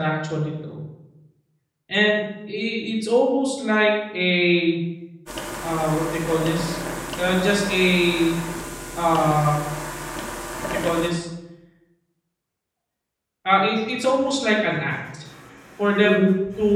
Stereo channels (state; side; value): identical; both; correlation 1.00